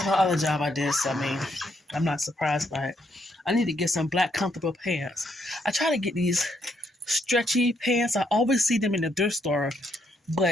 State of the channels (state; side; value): normal; both; correlation 0.74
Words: The other job I did, so I mean, I'm not surprised by it. I need to get some black comfortable pants. I try to get these stretchy pants. I always see them in the thrift store,